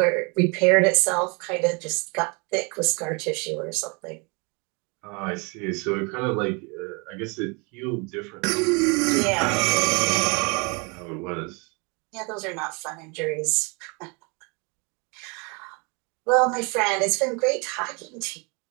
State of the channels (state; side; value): quieter; left; 31.2 dB